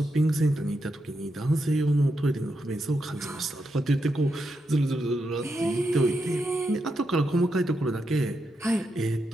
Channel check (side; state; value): both; normal; correlation 0.84